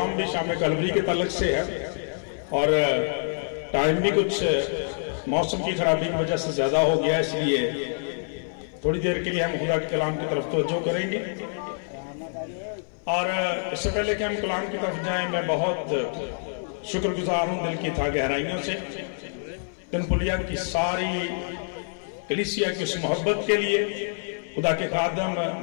بھی شام کلوری کے تعلق سے ہے اور ٹائم بھی کچھ موسم کی خرابی کی وجہ سے زیادہ ہو گیا، اس لیے تھوڑی دیر کے لیے ہم خدا کے کلام کی طرف توجہ کریں گے. اور اس سے پہلے کہ ہم کلام کی طرف جائیں، میں بہت شکر گزار ہوں دل کی تھا گہرائیوں سے تنپلیا کی ساری کلیسیا کی اس محبت کے لیے. خدا کے خادم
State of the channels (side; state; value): right; silent; 59 dB below the other